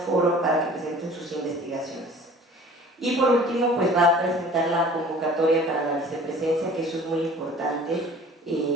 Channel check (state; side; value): normal; both; correlation 0.47